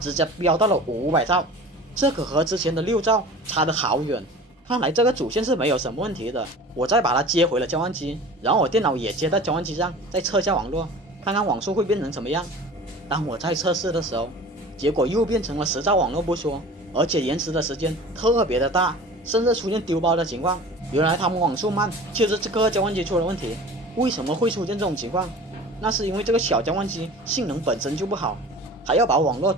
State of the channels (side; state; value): both; normal; correlation 0.40